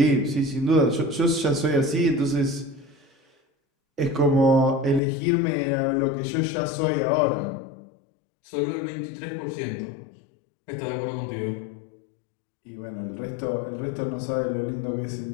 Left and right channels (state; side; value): drops out; right; at 5.0 s